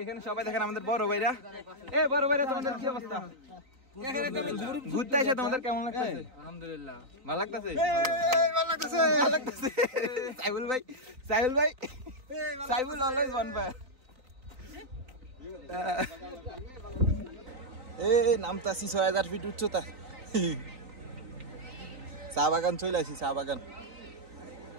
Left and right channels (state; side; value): late; left; 3.9 ms